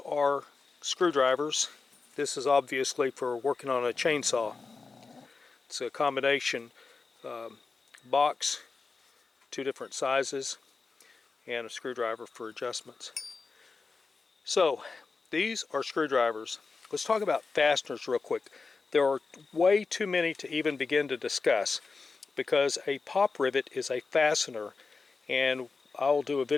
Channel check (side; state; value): right; quieter; 4.4 dB